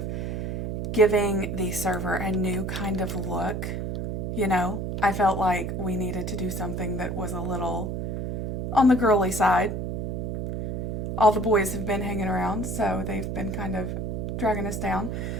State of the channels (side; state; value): right; noise; hum, 3 dB below the sound